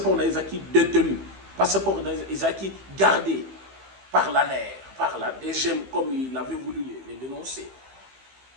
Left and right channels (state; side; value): late; left; 15 ms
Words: n'a été détenu, passeport n'a été gardé par l'ANER, par la DGM, comme il avait voulu les dénoncer.